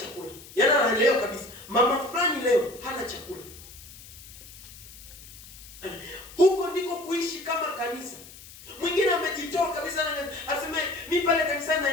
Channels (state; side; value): noise; left; hiss, 18 dB below the sound